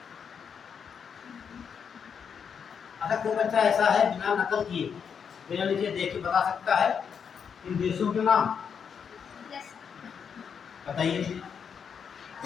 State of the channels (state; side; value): quieter; right; 7.0 dB